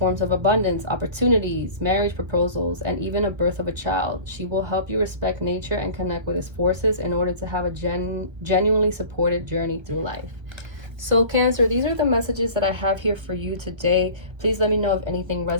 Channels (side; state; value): left; late; 1.5 ms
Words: of abundance, opportunities, marriage proposals, and even a birth of a child. She will help you respect nature and connect with its forces in order to have a genuinely supported journey through life. So Cancer, these are the messages that I have here for you today. Please let me know if anything